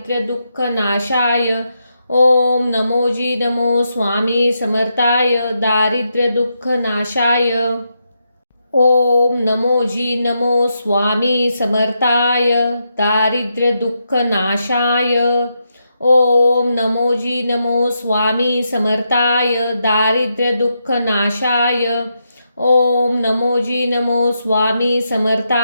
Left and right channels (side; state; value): both; inverted; correlation -0.83